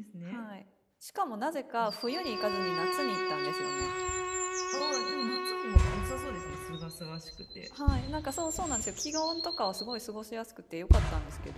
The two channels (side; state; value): both; identical; correlation 1.00